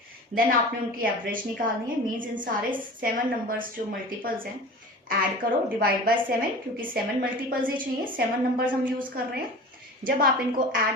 देन आपने उनकी एवरेज निकालनी है, मीन्स इन सारे 7 नंबर्स जो मल्टीपल्स हैं ऐड करो, डिवाइड बाय 7, क्योंकि 7 मल्टीपल्स ही चाहिए, 7 नंबर्स हम यूज कर रहे हैं। जब आप इनको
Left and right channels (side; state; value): both; normal; correlation 0.37